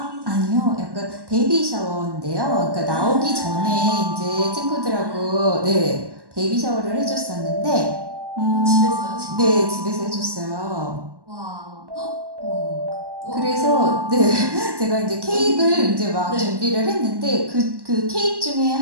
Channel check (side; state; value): left; late; 1.1 ms